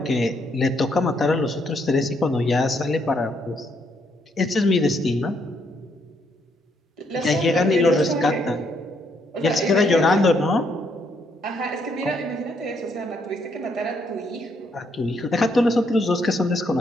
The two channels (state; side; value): normal; both; correlation 0.73